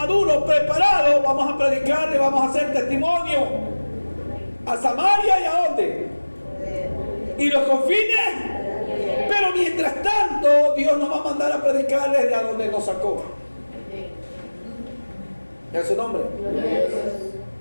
preparados, vamos a predicarle, vamos a hacer testimonio a Samaria y a dónde. Y los confines. Pero mientras tanto, Dios nos va a mandar a predicarle de a donde nos sacó. ¿Es su nombre?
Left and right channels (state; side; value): inverted; both; correlation -1.00